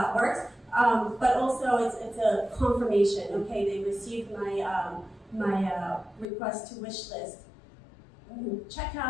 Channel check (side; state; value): right; drops out; at 6.2 s